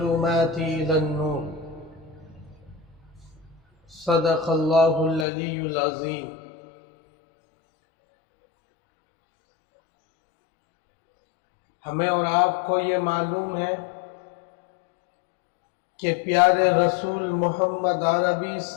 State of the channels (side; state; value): right; drops out; at 5.2 s